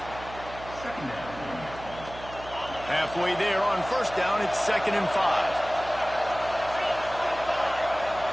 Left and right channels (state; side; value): noise; right; hum, 15 dB below the sound